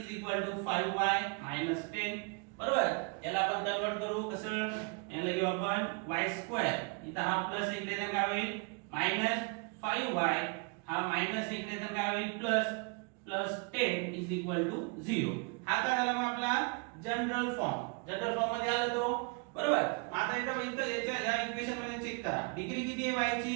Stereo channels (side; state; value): left; quieter; 33.8 dB